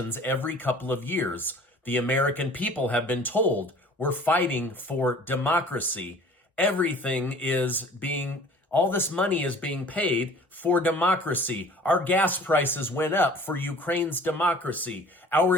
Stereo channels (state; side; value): normal; both; correlation 0.48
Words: every couple of years. The American people have been told we're fighting for democracy. All this money is being paid for democracy. Our gas prices went up for Ukraine's democracy. Our